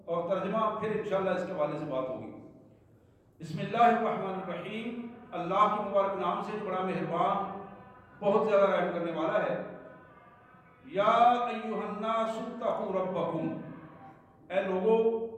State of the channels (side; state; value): both; identical; correlation 1.00